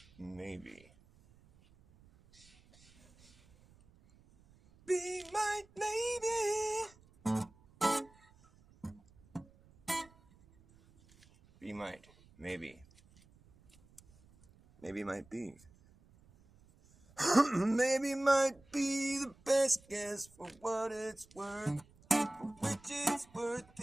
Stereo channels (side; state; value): right; noise; rumble, 28 dB below the sound